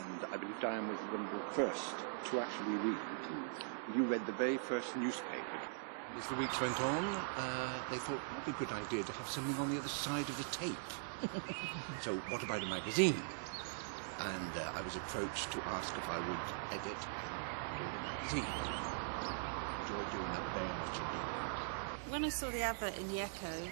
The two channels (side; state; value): left; silent; digital silence